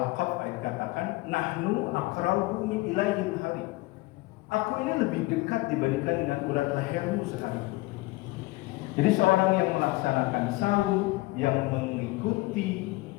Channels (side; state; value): right; quieter; 21.5 dB